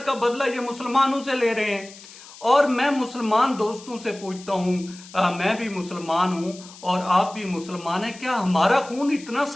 का बदला ये मुसलमानों से ले रहे हैं। और मैं मुसलमान दोस्तों से पूछता हूं, मैं भी मुसलमान हूं और आप भी मुसलमान हैं, क्या हमारा खून इतना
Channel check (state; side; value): noise; left; hiss, 19 dB below the sound